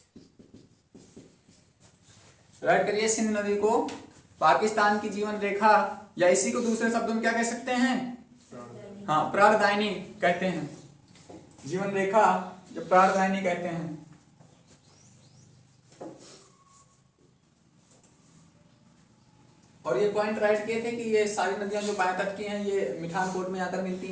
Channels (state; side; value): identical; both; correlation 1.00